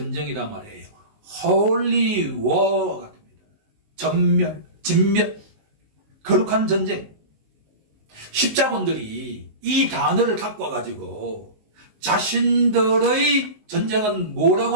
말이에요. Holy War 같습니다. 전멸, 진멸, 거룩한 전쟁. 십자군들이 이 단어를 갖고 와가지고 자신들의 전쟁은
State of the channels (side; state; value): left; late; 19 ms